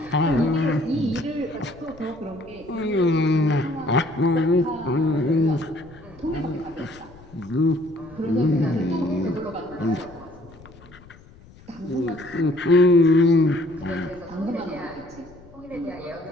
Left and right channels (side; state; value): left; noise; rumble, 22 dB below the sound